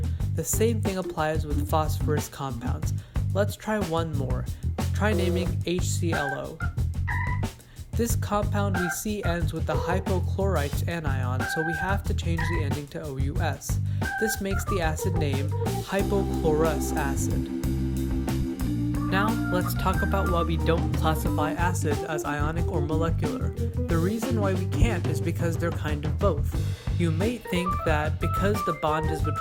The same thing applies with phosphorus compounds. Let's try one more. Try naming HClO. This compound we see ends with the hypochlorite anion, so we have to change the ending to OUS. This makes the acid name hypochlorous acid. Now, let's talk about why we don't classify acids as ionic or molecular. The reason why we can't is because they're kind of both. You may think that because the bond is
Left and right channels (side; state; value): both; identical; correlation 1.00